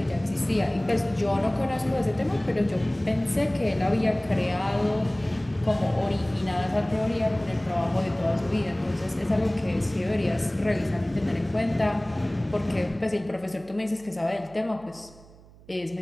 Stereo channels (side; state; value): right; noise; hum, 23 dB below the sound